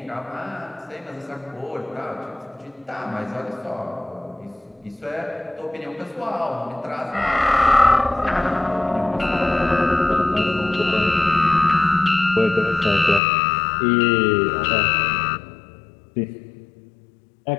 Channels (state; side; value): drops out; right; at 13.2 s